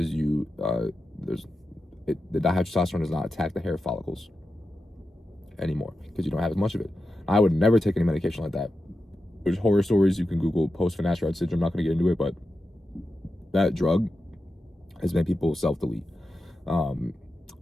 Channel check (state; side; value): normal; both; correlation 0.91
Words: you the dihydrotestosterone does not attack the hair follicles anymore because you don't have as much of it. I would never take any medication like that. There's horror stories you can Google post finasteride syndrome. I'm not going to get into it, but that drug has made people self-delete